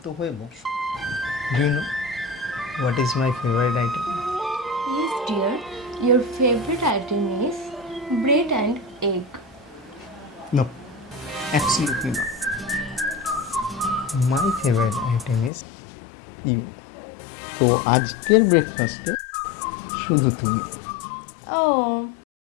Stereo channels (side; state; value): right; drops out; at 15.5 s